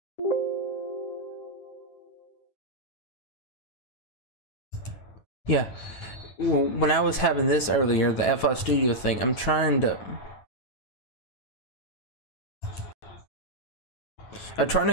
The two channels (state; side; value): late; right; 9.1 ms